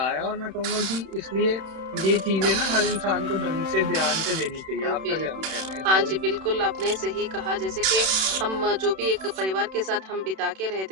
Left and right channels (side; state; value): left; late; 32 ms